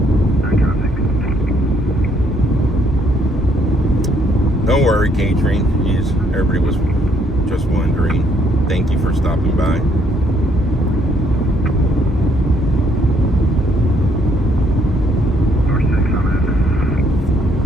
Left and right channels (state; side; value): normal; both; correlation 0.68